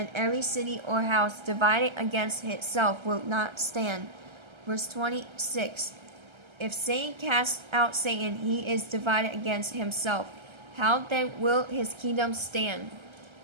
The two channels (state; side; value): late; left; 1.3 ms